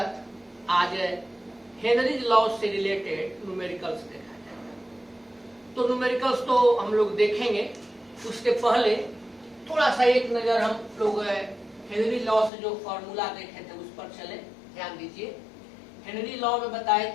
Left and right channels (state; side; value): drops out; right; at 12.5 s